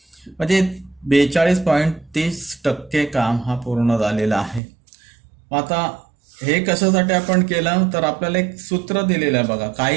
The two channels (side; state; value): left; drops out; at 4.6 s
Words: म्हणजे 42.30% काम हा पूर्ण झालेला आहे. आता हे कशासाठी आपण केलं तर आपल्याला एक सूत्र दिलेलं आहे बघा.